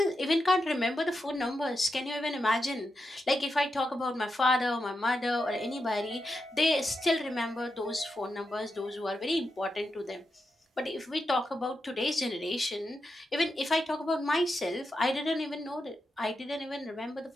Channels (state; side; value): normal; both; correlation 0.87